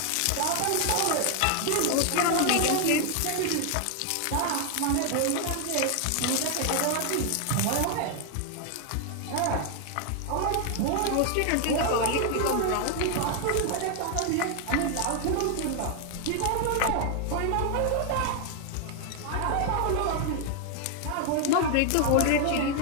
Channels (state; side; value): different; both; correlation 0.00